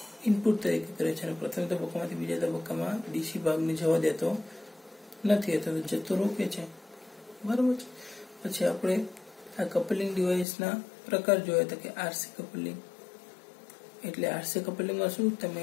ઇનપુટ તરીકે કરે છે અને પ્રથમ તબક્કામાંથી બીજા તબક્કામાં ડીસી ભાગને જવા દેતો નથી, અથવા તો જતો રોકે છે, બરાબર છે. પછી આપણે આ કપલિંગ ડિવાઇસના પ્રકાર જોયા હતા કે આરસી કપલિંગ એટલે આરસી કપલિંગમાં શું તમે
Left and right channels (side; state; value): right; drops out; at 10.5 s